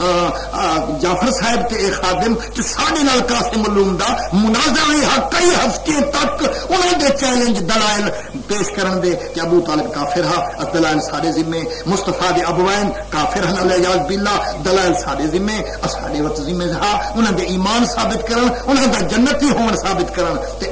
جعفر صاحب تے اے خادم تے سارے نال قاسم علوم دا مناظرہ کئی ہفتے تک انہاں دے چیلنج دلائل پیش کرن دے کہ ابو طالب کافر ہا دلائل سارے ذمے مصطفیٰ دے ابوین کافر ہن الیاذ باللہ دلائل سارے ذمے اساڈے وقت ذمہ ہا انہاں دے ایمان ثابت کرن انہاں دا جنتی ہون ثابت کرن تے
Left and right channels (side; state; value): both; identical; correlation 1.00